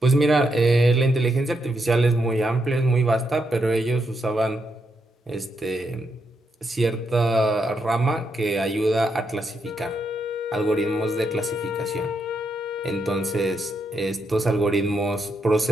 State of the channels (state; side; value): normal; both; correlation 0.81